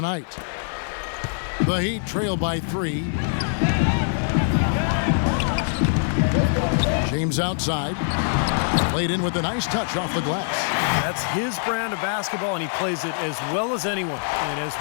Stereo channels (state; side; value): silent; right; 56 dB below the other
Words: night. The Heat trail by 3. James outside. Played in with a nice touch off the glass. That's his brand of basketball, and he plays it as well as anyone. And as